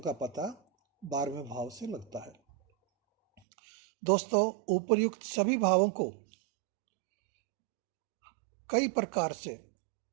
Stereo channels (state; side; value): drops out; left; at 3.4 s